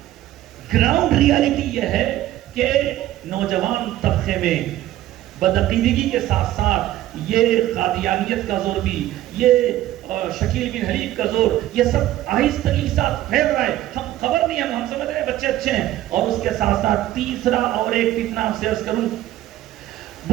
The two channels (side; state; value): left; quieter; 14.2 dB